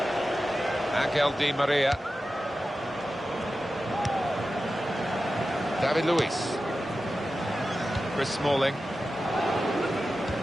Angel Di Maria. David Luiz. Chris Smalling.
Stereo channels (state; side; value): normal; both; correlation 0.93